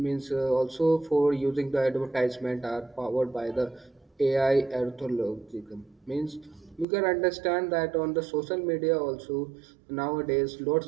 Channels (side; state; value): left; drops out; at 6.9 s